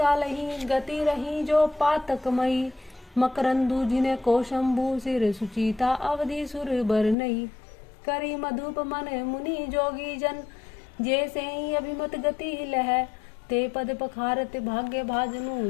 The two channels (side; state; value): right; drops out; at 7.2 s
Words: गति रही जो पातकमयी। मकरंदु जिने कौशंबु सिर सुचिता अवधि सुर बर नई। करी मधुप मन मुनि जोगी जन जैसे ही अभिमत गति लह। ते पद पखारत भाग्य भाजनु